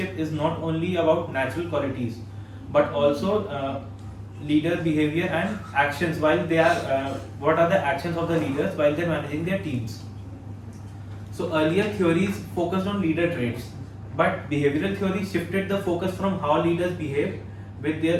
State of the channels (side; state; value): both; identical; correlation 1.00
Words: is not only about natural qualities but also leader behavior and actions while they are what are the actions of the leaders while they're managing their teams. So earlier theories focused on leader traits, but behavioral theory shifted the focus from how leaders behave with